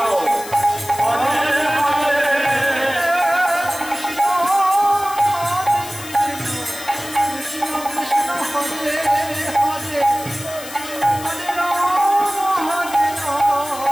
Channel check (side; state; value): left; noise; hiss, 13 dB below the sound